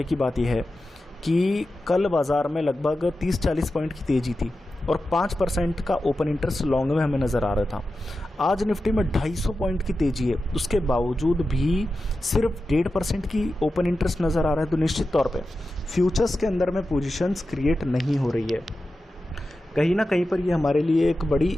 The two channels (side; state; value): both; normal; correlation 0.92